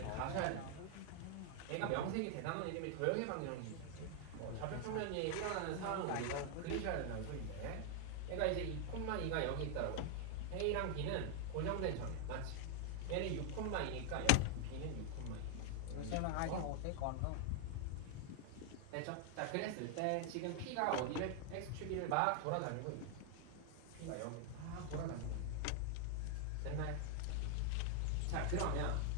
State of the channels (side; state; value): both; different; correlation 0.00